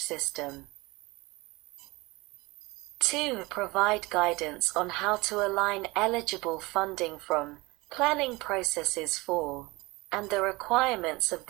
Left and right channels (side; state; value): left; quieter; 22.9 dB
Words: system. 2. Provide guidance on how to align eligible funding from planning processes for and the requirements of